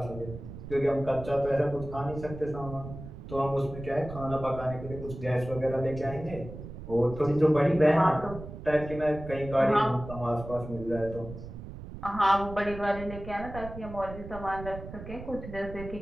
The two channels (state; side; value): noise; right; rumble, 12 dB below the sound